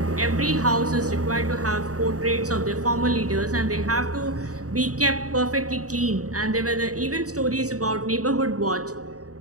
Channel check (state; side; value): late; left; 0.66 ms